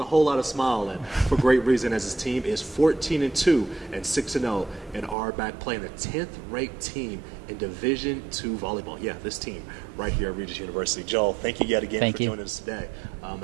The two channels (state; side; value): drops out; left; at 5.2 s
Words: a whole lot of smile, and for great reason, as his team is 14-2 and 6-0 in Armac, playing the 10th-ranked team in Division II volleyball. Yeah, this team right here at Regis University. Joel, thank you yet again for joining us today,